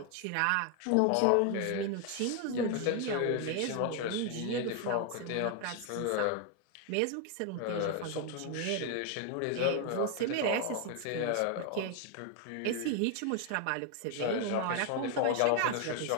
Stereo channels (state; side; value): different; both; correlation 0.01